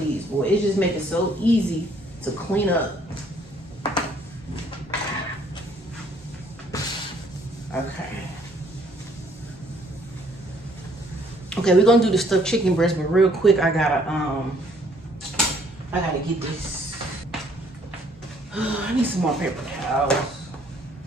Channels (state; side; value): normal; both; correlation 0.63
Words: boy. It just makes it so easy to clean up. Okay, we're gonna do the stuffed chicken breast, but real quick, I gotta get this. I need some more paper towels.